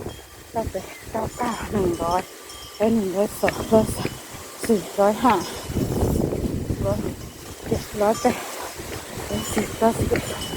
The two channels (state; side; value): identical; both; correlation 1.00